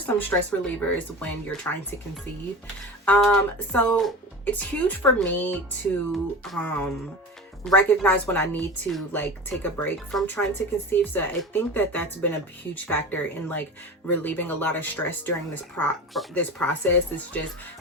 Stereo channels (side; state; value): both; normal; correlation 0.31